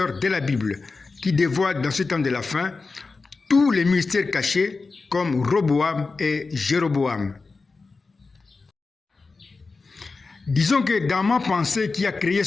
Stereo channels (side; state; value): right; quieter; 4.1 dB